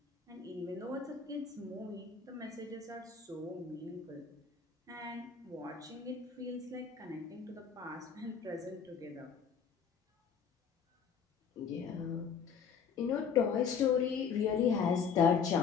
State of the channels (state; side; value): quieter; right; 6.4 dB